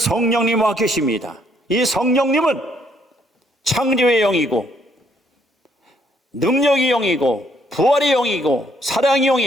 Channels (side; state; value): both; normal; correlation 0.69